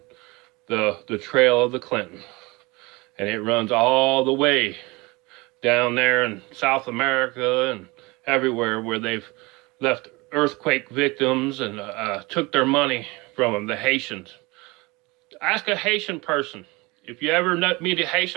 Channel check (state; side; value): quieter; left; 24.3 dB